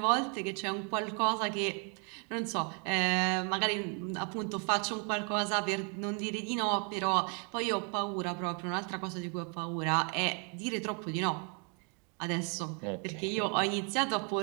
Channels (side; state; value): left; quieter; 37.7 dB